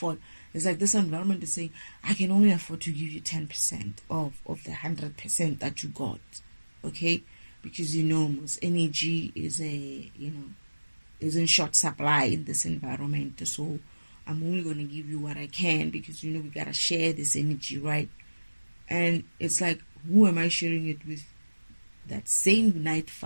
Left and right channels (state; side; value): inverted; both; correlation -1.00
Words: It's like this environment is saying, I can only afford to give you 10% of the 100% that you got. Okay? Because most energy is is in short supply in this environment. So I'm only going to give you what I can because we got to share this energy, right? And it's like, who am I sharing it with? That same night